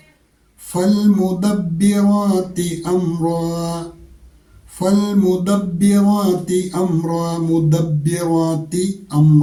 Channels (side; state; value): both; identical; correlation 1.00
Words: ഫൽ മുദബ്ബിറാത്തി അംറ, ഫൽ മുദബ്ബിറാത്തി അംറ, മുദബ്ബിറാത്തി